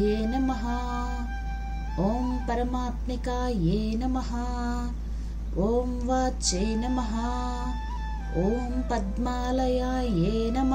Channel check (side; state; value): both; identical; correlation 1.00